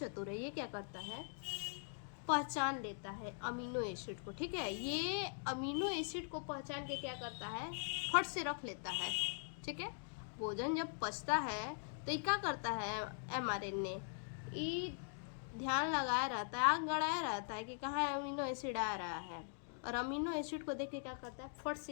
है। ये क्या करता है, पहचान लेता है अमीनो एसिड को, ठीक है। ये अमीनो एसिड को पहचान के क्या करता है, फट से रख लेता है, ठीक है। भोजन जब पचता है तो ये क्या करता है, mRNA ये ध्यान लगाया रहता है, आग गड़ाया रहता है कि कहाँ अमीनो एसिड आ रहा है, और अमीनो एसिड को देख के क्या करता है, फट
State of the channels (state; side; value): silent; right; digital silence